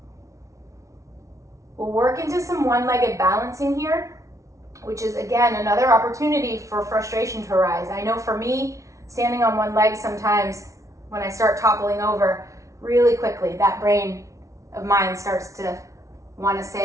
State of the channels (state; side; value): late; left; 0.15 ms